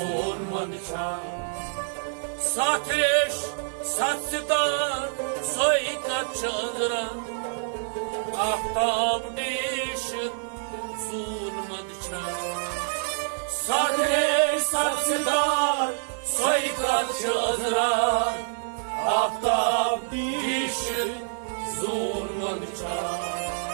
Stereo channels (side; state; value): left; silent; digital silence